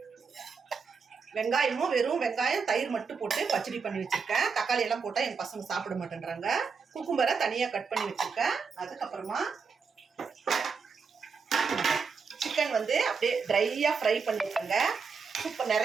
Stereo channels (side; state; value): left; quieter; 5.4 dB